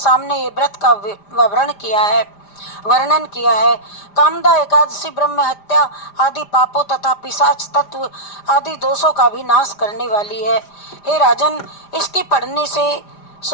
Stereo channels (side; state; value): right; late; 5.0 ms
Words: ये व्रत का वर्णन किया है। कामदा एकादशी ब्रह्म हत्या आदि पापों तथा पिशाच तत्व आदि दोषों का भी नाश करने वाली है। हे राजन, इसके पढ़ने से